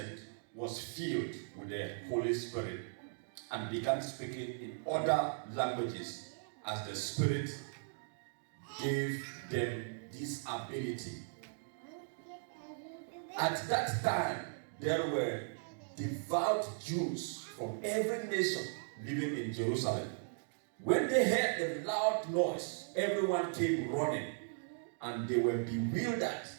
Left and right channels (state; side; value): silent; left; digital silence